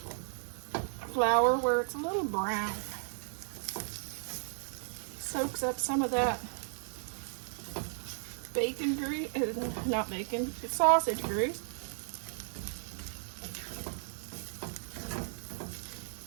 flour where it's a little brown. Soaks up some of that bacon grease, not bacon, it's sausage grease.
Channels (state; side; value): silent; left; 55 dB below the other